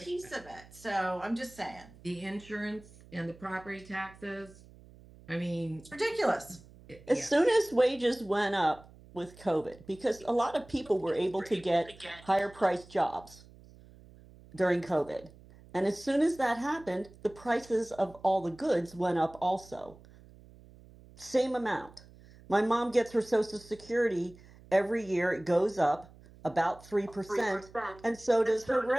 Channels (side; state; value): right; noise; hum, 22 dB below the sound